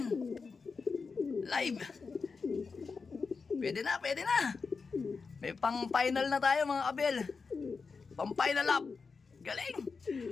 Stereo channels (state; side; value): quieter; right; 4.8 dB